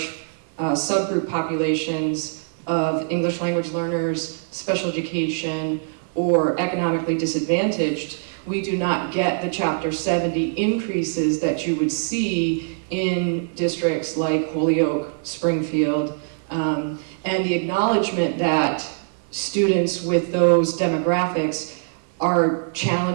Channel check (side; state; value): left; silent; 63 dB below the other